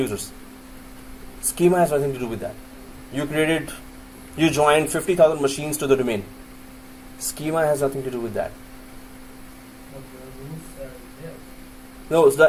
Schema has nothing to do with that. You joined 50,000 machines to the domain. Schema has nothing to do with that. No, so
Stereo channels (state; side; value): identical; both; correlation 1.00